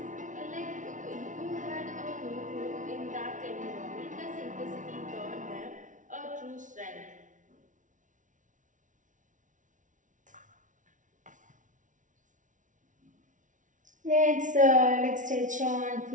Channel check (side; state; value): left; late; 0.37 ms